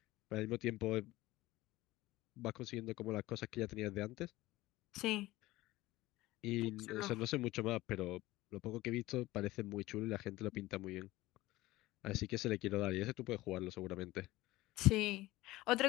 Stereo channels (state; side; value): quieter; right; 18.1 dB